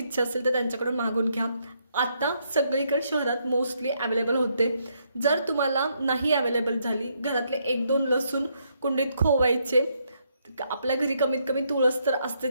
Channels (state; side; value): inverted; both; correlation -0.75